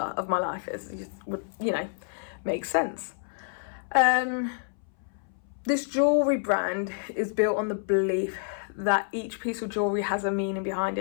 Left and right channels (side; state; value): right; silent; 59 dB below the other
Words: of my life, as it would, make sense. This jewellery brand is built on the belief that each piece of jewellery has a meaning behind